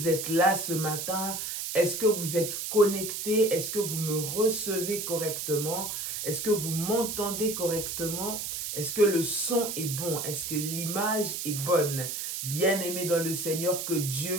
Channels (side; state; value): right; noise; hiss, 4 dB below the sound